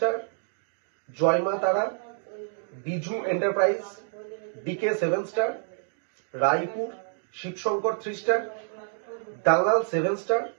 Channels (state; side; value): silent; left; digital silence